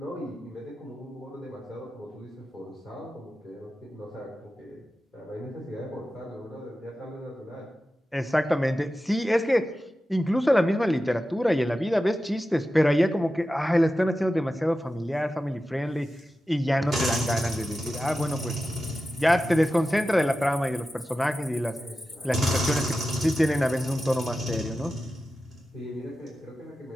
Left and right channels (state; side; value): normal; both; correlation 0.93